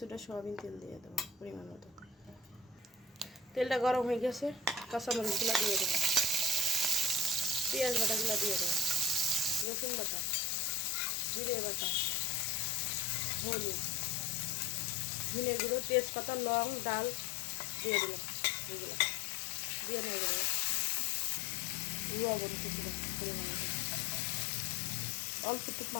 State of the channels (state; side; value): drops out; right; at 9.7 s